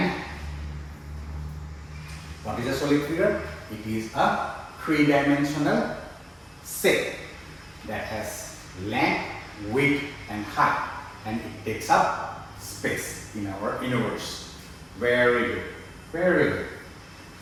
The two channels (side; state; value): both; identical; correlation 1.00